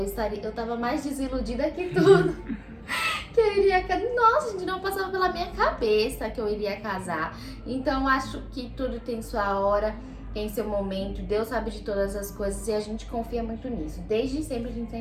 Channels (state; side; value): identical; both; correlation 1.00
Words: tava mais desiludida que tudo. Que eu iria casar. Nossa, gente, não passava pela minha cabeça que eu iria casar. Então, acho que tudo tem sua hora, tem seu momento. Deus sabe de todas as coisas e a gente confia muito nisso. Desde sempre a gente